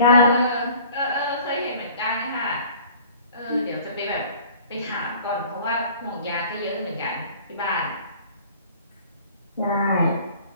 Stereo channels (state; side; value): inverted; both; correlation -0.49